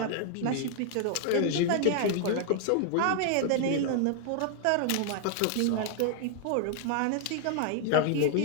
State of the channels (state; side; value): different; both; correlation 0.00